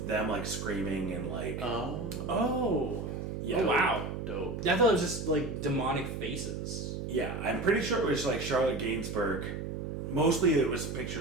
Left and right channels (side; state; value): right; noise; hum, 5 dB below the sound